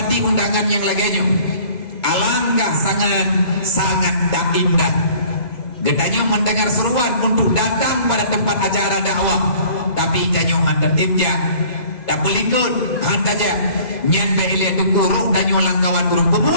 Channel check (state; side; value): late; right; 2.0 ms